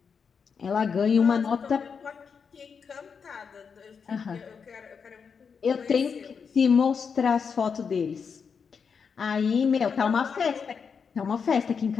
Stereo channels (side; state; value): right; quieter; 6.1 dB